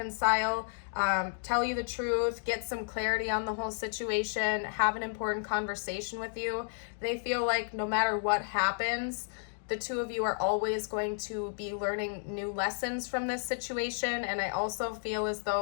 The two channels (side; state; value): right; silent; digital silence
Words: tell you the truth, get some clarity on the whole situation, have an important conversation with you. They feel like no matter what happens, the two of you are always going to be learning new lessons from this situation. And I also feel as